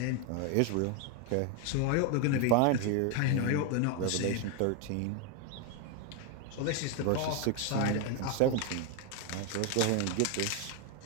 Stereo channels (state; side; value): different; both; correlation 0.01